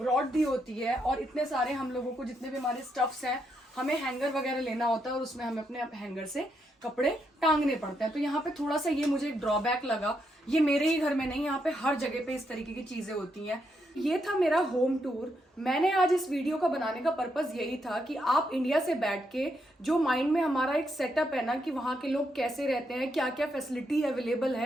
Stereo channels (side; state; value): both; normal; correlation 0.79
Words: दी होती है, और इतने सारे हम लोगों को जितने भी हमारे स्टफ्स हैं, हमें हैंगर वगैरह लेना होता है और उसमें हमें अपने हैंगर से कपड़े टांगने पड़ते हैं। तो यहाँ पे थोड़ा सा ये मुझे एक ड्रॉबैक लगा। ये मेरे ही घर में नहीं, यहाँ पे हर जगह पे इस तरीके की चीजें होती हैं। ये था मेरा होम टूर। मैंने आज इस वीडियो का बनाने का पर्पस यही था कि आप इंडिया से बैठ के जो माइंड में हमारा एक सेटअप है ना कि वहाँ के लोग कैसे रहते हैं, क्या क्या फैसिलिटी अवेलेबल